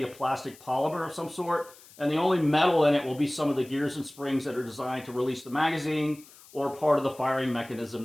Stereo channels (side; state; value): left; noise; hiss, 23 dB below the sound